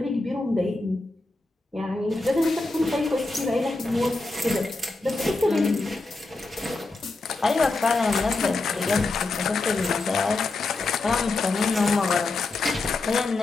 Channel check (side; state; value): right; quieter; 3.3 dB